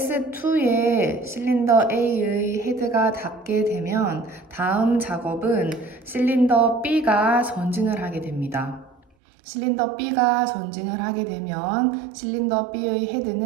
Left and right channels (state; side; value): drops out; left; at 9.0 s